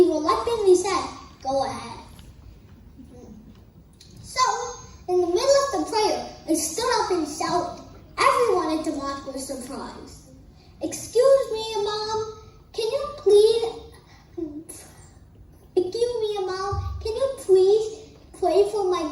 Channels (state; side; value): identical; both; correlation 1.00